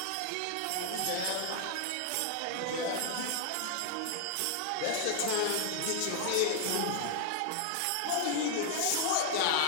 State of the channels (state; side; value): different; both; correlation 0.00